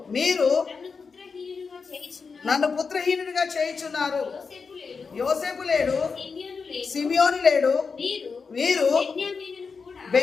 మీరు నన్ను పుత్రహీనుడిగా చేయుచున్నారు యోసేపు లేడు సిమియోను లేడు వీరు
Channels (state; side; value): quieter; right; 5.1 dB